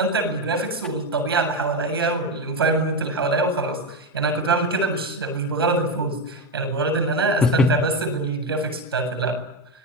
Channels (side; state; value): both; normal; correlation 0.12